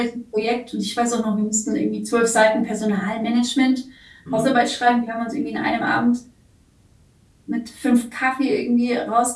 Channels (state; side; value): identical; both; correlation 1.00